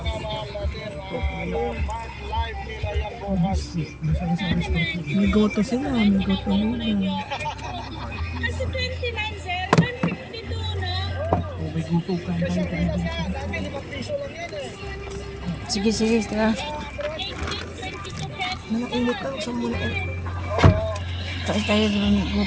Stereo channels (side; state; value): both; identical; correlation 1.00